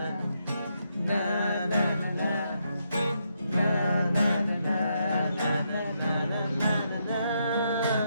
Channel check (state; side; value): inverted; both; correlation -0.79